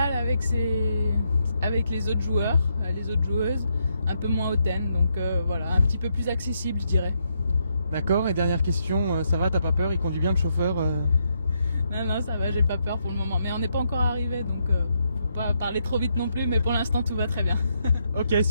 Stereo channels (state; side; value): inverted; both; correlation -0.79